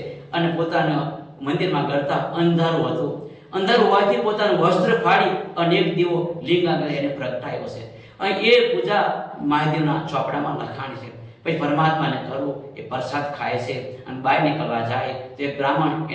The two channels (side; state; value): both; identical; correlation 1.00